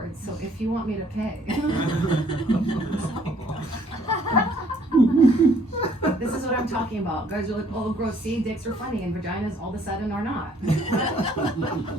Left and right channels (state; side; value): normal; both; correlation 0.62